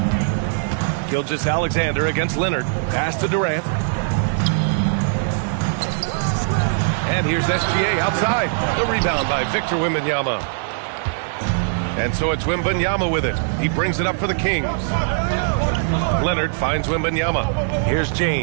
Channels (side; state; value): left; silent; digital silence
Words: Gilgeous-Alexander against Leonard. Pass to Durant. And here's SGA outside. The rebound by Victor Wembanyama. And so it's Wembanyama with it. He brings it up for the Kings. Leonard finds Wembanyama. Here's